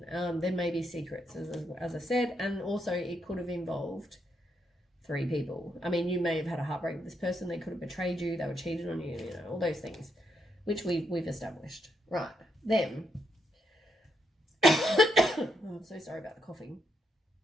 There may be secrets, as I said, and also it could have involved 3 people. I mean, you may have had a heartbreak with this person. They could have betrayed you. They were cheated on you. You know, all those things, which we've established. Right. Them. Oh, I'm so sorry about the coughing.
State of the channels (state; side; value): normal; both; correlation 0.79